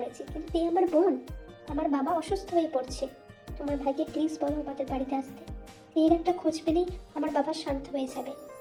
কিন্তু এই আমার বোন, আমার বাবা অসুস্থ হয়ে পড়ছে। তোমার ভাইকে প্লিজ বলো আমাদের বাড়িতে আসতে। এর একটা খোঁজ পেলেই আমার বাবা শান্ত হয়ে যাবে।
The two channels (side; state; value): both; identical; correlation 1.00